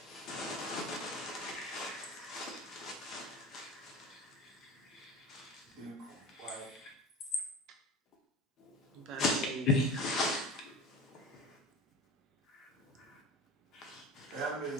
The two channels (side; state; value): both; normal; correlation 0.33